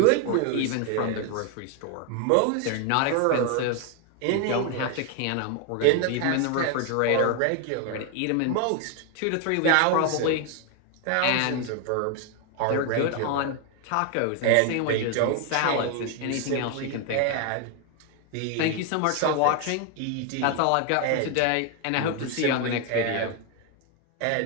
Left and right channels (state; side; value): different; both; correlation 0.01